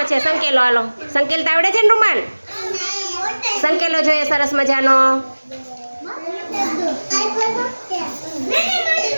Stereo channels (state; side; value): inverted; both; correlation -1.00